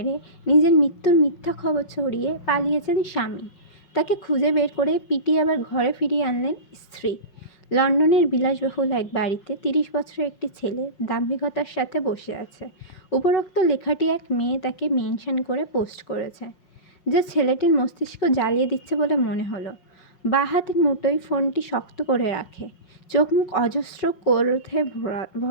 নিজের মৃত্যুর মিথ্যা খবর ছড়িয়ে পালিয়েছেন স্বামী। তাকে খুঁজে বের করে পিটিয়ে আবার ঘরে ফিরিয়ে আনলেন স্ত্রী। লন্ডনের বিলাসবহুল এক বাড়িতে 30 বছরের একটি ছেলে দাম্ভিকতার সাথে বসে আছে। উপরোক্ত লেখাটি এক মেয়ে তাকে মেনশন করে পোস্ট করেছে, যে ছেলেটির মস্তিষ্ক জ্বালিয়ে দিচ্ছে বলে মনে হলো। বাঁ হাতের মুঠোয় ফোনটি শক্ত করে রাখে, চোখ মুখ অজস্র ক্রোধে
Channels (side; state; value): right; late; 5.5 ms